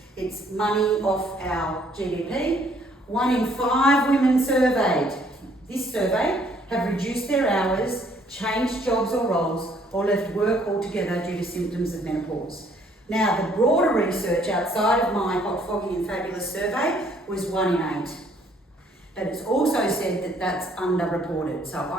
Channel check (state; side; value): normal; both; correlation 0.64